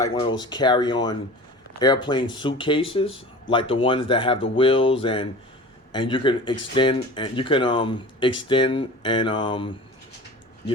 one of those carry-on airplane suitcases, like the ones that have the wheels and you can extend and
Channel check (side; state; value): both; normal; correlation 0.38